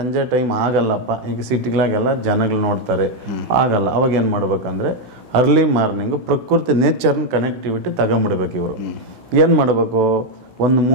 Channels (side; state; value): left; late; 16 ms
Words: ಟೈಮ್ ಆಗಲ್ಲಪ್ಪ, ಈಗ ಸಿಟಿಗಳಾಗೆಲ್ಲ ಜನಗಳು ನೋಡ್ತಾರೆ, ಆಗಲ್ಲ, ಅವಾಗ ಏನು ಮಾಡ್ಬೇಕಂದ್ರೆ ಅರ್ಲಿ ಮಾರ್ನಿಂಗು ಪ್ರಕೃತಿ ನೇಚರ್ನ ಕನೆಕ್ಟಿವಿಟಿ ತಗೊಂಬಿಡ್ಬೇಕು. ಇವರು ಏನು ಮಾಡಬೇಕು, ಒಂದು